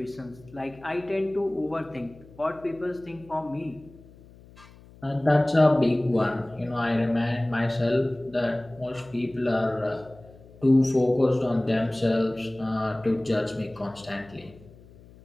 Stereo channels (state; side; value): noise; left; hum, 23 dB below the sound